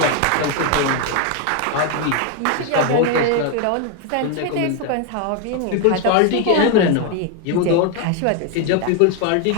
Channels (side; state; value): both; different; correlation 0.01